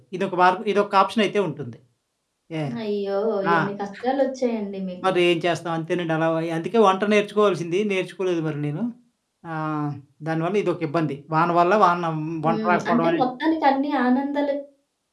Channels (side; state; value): both; identical; correlation 1.00